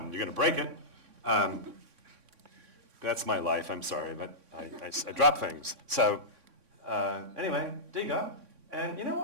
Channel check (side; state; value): left; late; 3.6 ms